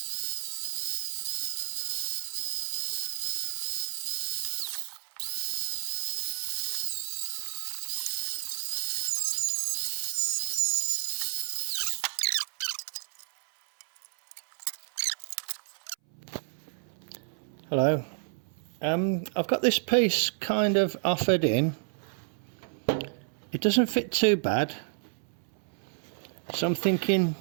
Hello, I've got this piece kind of offered in. It doesn't fit too bad, so I'm thinking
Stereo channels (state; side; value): silent; left; 58 dB below the other